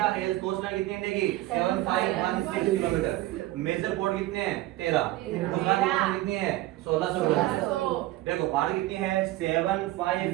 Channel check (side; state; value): left; quieter; 16.4 dB